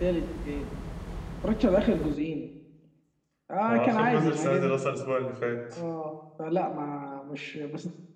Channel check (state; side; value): identical; both; correlation 1.00